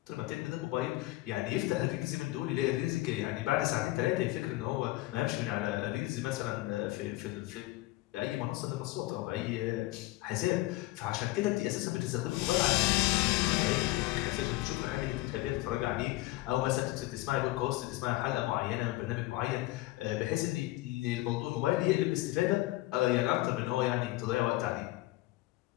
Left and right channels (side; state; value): right; quieter; 18.7 dB